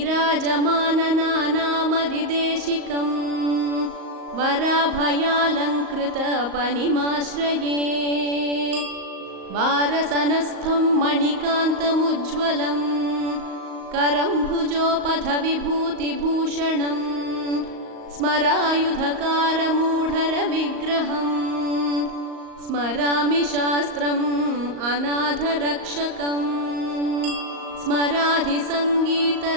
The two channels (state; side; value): late; left; 38 ms